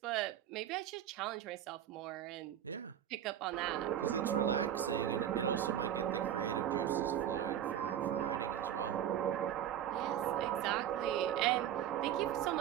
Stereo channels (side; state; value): left; quieter; 10.4 dB